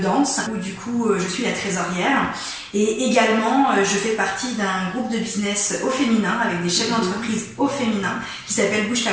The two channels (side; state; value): both; identical; correlation 1.00